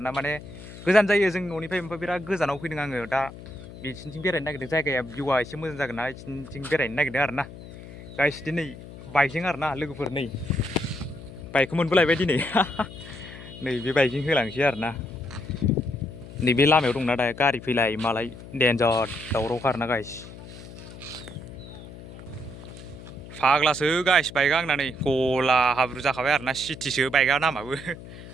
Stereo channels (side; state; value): left; noise; hum, 15 dB below the sound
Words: माने गोजान जायो जोंनि न'निफ्राय, ओमफ्राय बिराद गोजानाव फैदों आङो दा बिसिनिथिं बेरायनो नागिरदों. जायगाया भिउआ एसे मोजां जागोन ना, बिसिनिथिं बेरायनो नागिरदों आरोना. Guys, दिनै बाइकजों आरोना लोगोफोर नै बाइकखौ मोनबोलायबाय दिनै. नै बे बाइकजों होलांसै आरोना. नैबे लामायाव दंना दा गारि फैलाय मालाय डेन्जार दावरावखा आरोना गाइस. फाग्लासो गाइस बाइकआ आंना नै गला हाब्रु जाखाबाय आरोना. सिटिसो बाइकआ नामाबो